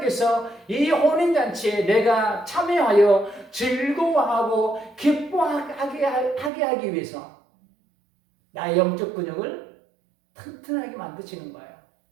이 혼인잔치에 내가 참여하여 즐거워하고 기뻐하게 하기 위해서 나의 영적 근육을 튼튼하게 만드시는 거예요.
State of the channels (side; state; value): left; drops out; at 6.5 s